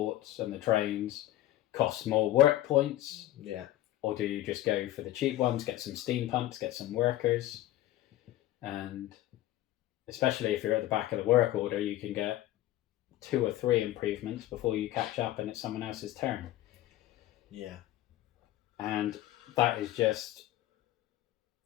and the trains cost more work points. Yeah. Or do you just go for the cheap ones, get some steam pumps, get some workers? And especially if you're at the back of the work order, you can get 2 or 3 improvements before you catch up and it's someone else's turn. Yeah. And that is just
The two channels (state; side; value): quieter; right; 14.8 dB